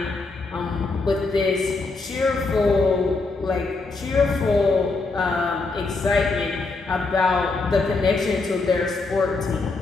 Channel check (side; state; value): right; quieter; 3.7 dB